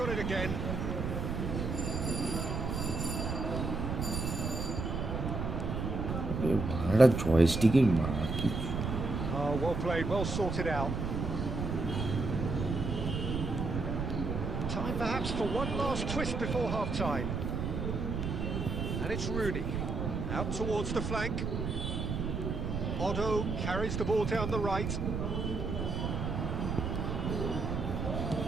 got it again. ভাড়া জয়স্টিকের মা কি. Oh, well played, well sorted out. Time perhaps for one last twist before half-time. And it's Rooney. Out towards the flank. Otto carries the ball down the right.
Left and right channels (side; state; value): right; noise; rumble, 2 dB below the sound